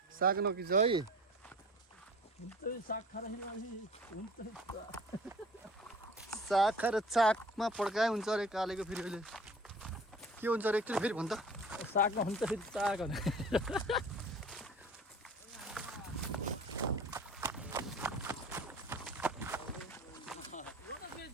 साग नकिच है साग खाएर चाकमा पड्काए हुन्छ अरे कालेको फेरि अहिले के हुन्छ अरे एकचोटि फेरि भन् त सागमा हुन्छ फेरि साग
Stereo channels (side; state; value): both; normal; correlation 0.44